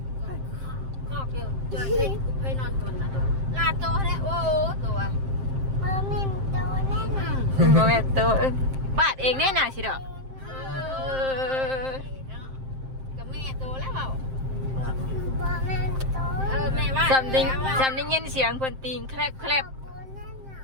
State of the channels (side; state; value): left; late; 7.6 ms